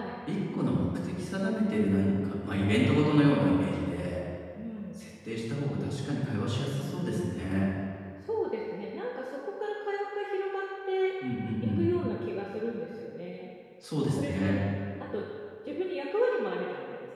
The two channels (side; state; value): both; identical; correlation 1.00